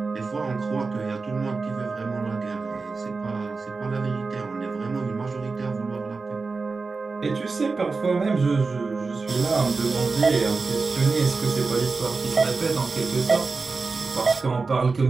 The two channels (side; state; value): left; quieter; 4.2 dB